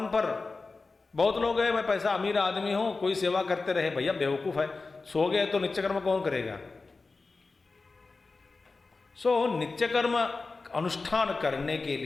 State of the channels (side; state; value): right; quieter; 3.9 dB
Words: पर। बहुत लोग हैं, मैं पैसा अमीर आदमी हूं, कोई सेवा करते रहे। भैया बेवकूफ है, सो गए तो नित्य कर्म कौन करेगा? नित्य कर्म अनुष्ठान करने के